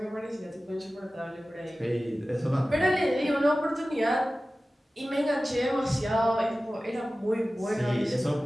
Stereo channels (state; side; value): normal; both; correlation 0.96